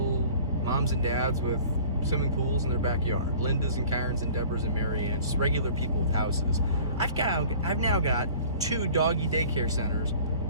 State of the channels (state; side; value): inverted; both; correlation -0.48